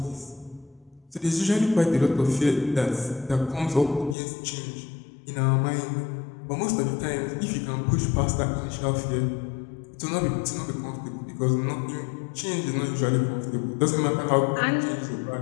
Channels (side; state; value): right; drops out; at 4.2 s